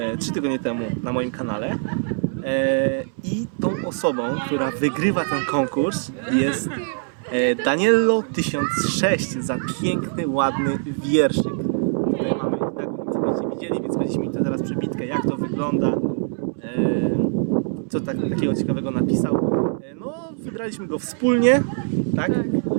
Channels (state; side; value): silent; left; 63 dB below the other